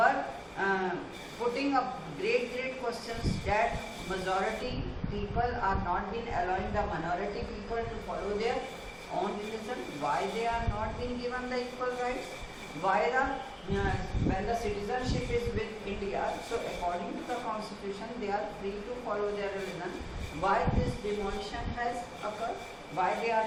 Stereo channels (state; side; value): identical; both; correlation 1.00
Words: putting up great questions that majority people are not being allowing the minority people to follow their own religion. Why they are not being given the equal rights? Why when the citizenship is with India, so according to the constitution, they are free to follow their religion. Why this demolition has occurred? Why they